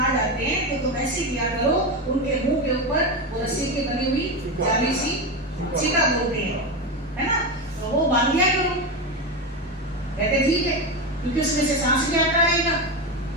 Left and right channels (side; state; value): both; normal; correlation 0.16